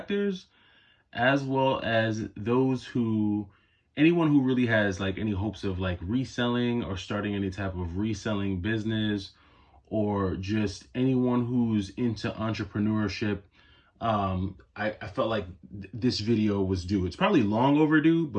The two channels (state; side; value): identical; both; correlation 1.00